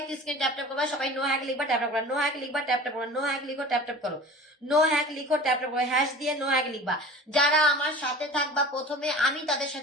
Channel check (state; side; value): normal; both; correlation 0.39